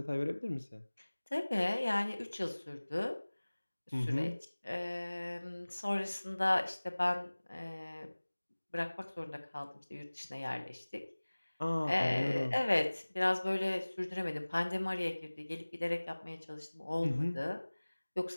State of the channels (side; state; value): both; inverted; correlation -1.00